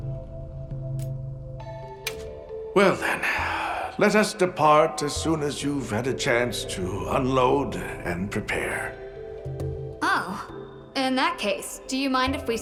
Well then, let us depart as soon as you've had a chance to unload and prepare. Oh, in that case, do you mind if we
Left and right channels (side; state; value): both; identical; correlation 1.00